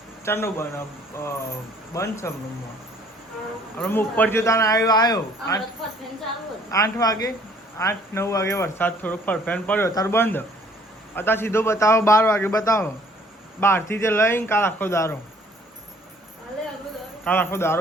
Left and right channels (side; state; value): both; normal; correlation 0.58